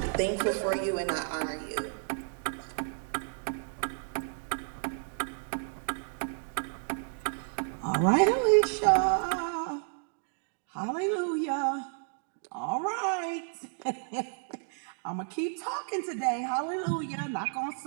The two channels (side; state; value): left; silent; digital silence